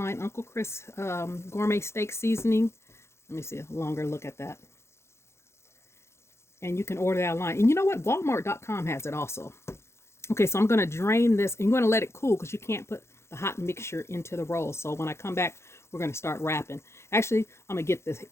Uncle Chris Gourmet Steak Seasoning. Let me see a longer look at that. And you can order that online. And you know what? Walmart.com has it also. Okay, so I'm going to drain this. And you're going to let it cool because you can't put the hot mixture into the roll. So when I come back, we're going to start wrapping. Actually, I'm going to get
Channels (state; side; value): late; right; 0.13 ms